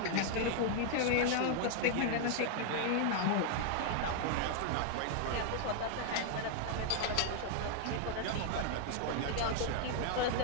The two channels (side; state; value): both; different; correlation 0.00